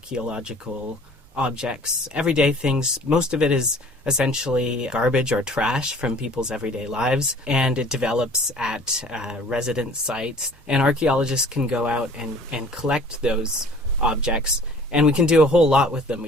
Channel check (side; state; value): both; normal; correlation 0.50